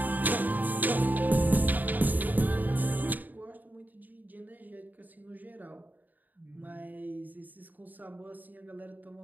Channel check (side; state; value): left; late; 0.085 ms